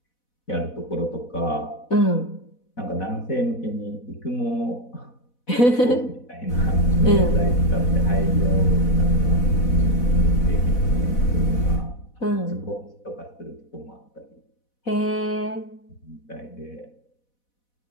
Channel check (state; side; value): late; right; 4.1 ms